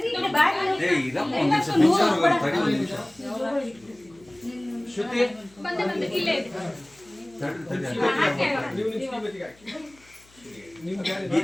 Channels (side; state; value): left; noise; hum, 29 dB below the sound